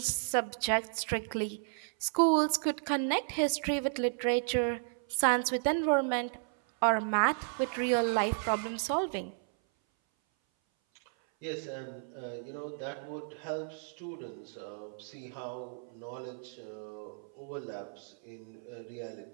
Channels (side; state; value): left; silent; 55 dB below the other